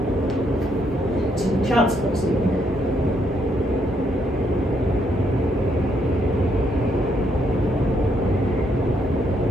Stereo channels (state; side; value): normal; both; correlation 0.74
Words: to the child's pose again.